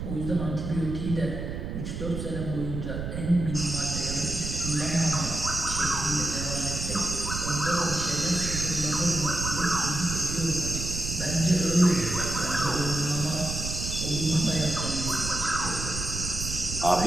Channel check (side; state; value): right; noise; rumble, 5 dB below the sound